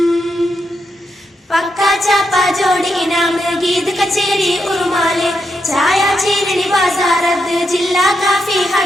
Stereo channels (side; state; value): both; normal; correlation 0.83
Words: പക്ക, ചാപ്പ, ജോഡി, ഇനാമ്, ഗീത്, കച്ചേരി, ഉറുമാല്, ചായ, ചീരണി, ബാസാറത്ത്, ജില്ലാ കാഫി,